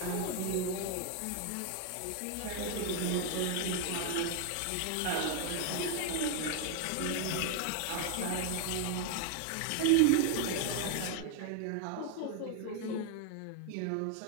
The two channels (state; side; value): different; both; correlation 0.00